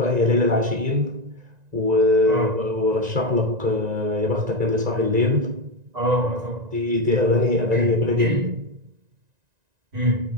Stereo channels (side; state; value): left; late; 1.9 ms